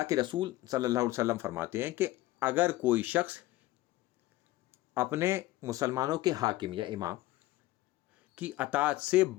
کے رسول صلی اللہ علیہ وسلم فرماتے ہیں کہ اگر کوئی شخص اپنے مسلمانوں کے حاکم یا امام کی اطاعت سے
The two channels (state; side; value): quieter; right; 17.1 dB